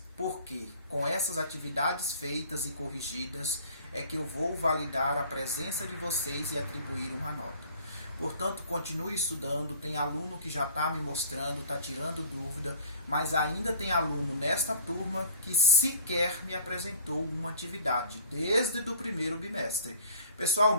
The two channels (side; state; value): both; inverted; correlation -0.48